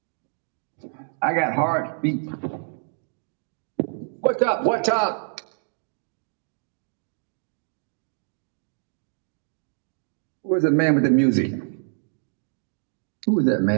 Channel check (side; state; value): left; silent; digital silence